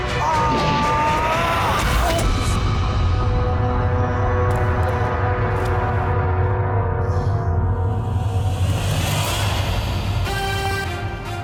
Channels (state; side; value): identical; both; correlation 1.00